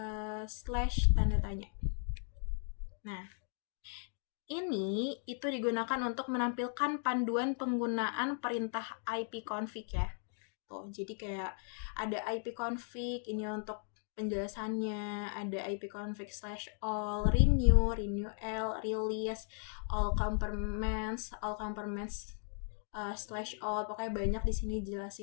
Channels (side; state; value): right; silent; 53 dB below the other